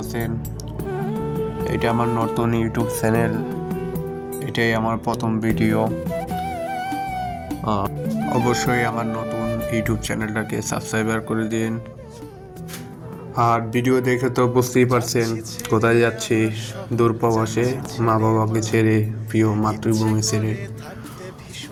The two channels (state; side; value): identical; both; correlation 1.00